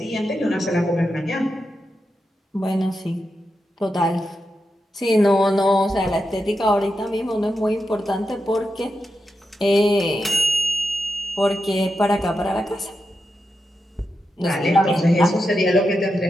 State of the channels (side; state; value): both; normal; correlation 0.88